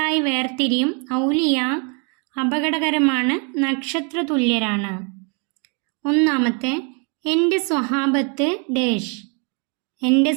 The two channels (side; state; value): left; quieter; 36.3 dB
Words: വേർതിരിയും. ഔലിയ അപകടകരമാണ്, നക്ഷത്ര തുല്യരാണ്. ഒന്നാമത്തെ എൻ്റെ സ്വഹാബത്ത് ഡേഷ്, എൻ്റെ